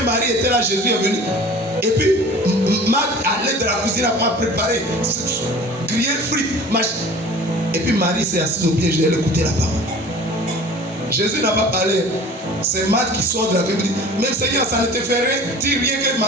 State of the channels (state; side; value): normal; both; correlation 0.43